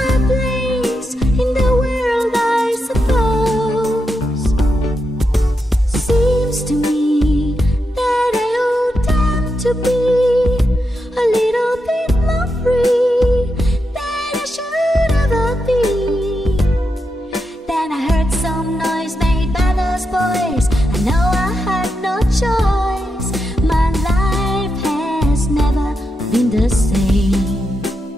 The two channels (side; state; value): both; normal; correlation 0.85